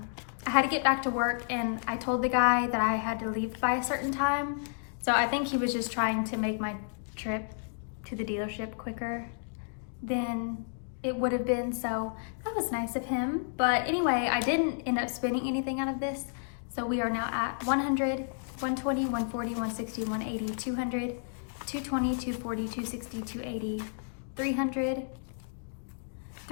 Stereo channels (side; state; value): right; silent; digital silence